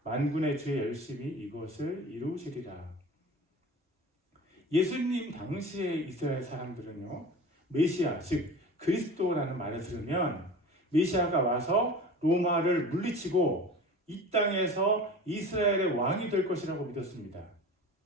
만군의 주의 열심히 이것을 이루시리라. 예수님 당시에 이스라엘 사람들은요, 메시아 즉 그리스도라는 말을 들으면 메시아가 와서 로마를 물리치고 이 땅에서 이스라엘의 왕이 될 것이라고 믿었습니다.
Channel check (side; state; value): both; normal; correlation 0.37